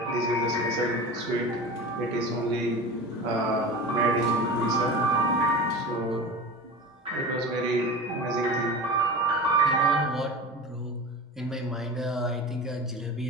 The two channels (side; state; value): both; normal; correlation 0.32